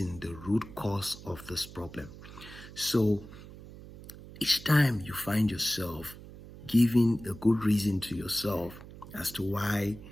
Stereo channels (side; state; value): right; noise; hum, 16 dB below the sound